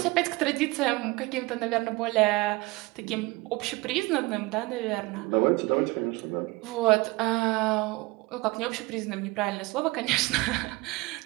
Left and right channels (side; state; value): left; quieter; 23.0 dB